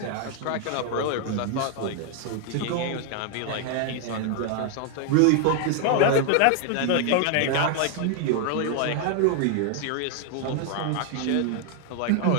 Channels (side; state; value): both; different; correlation 0.00